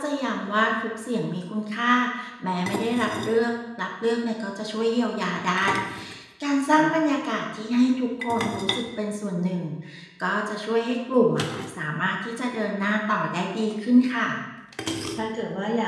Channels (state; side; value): identical; both; correlation 1.00